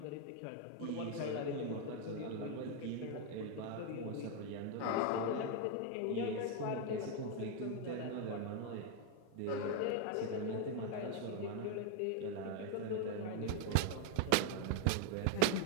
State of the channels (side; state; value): both; different; correlation 0.01